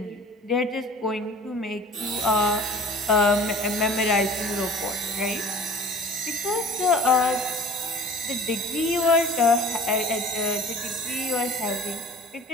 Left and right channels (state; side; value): normal; both; correlation 0.45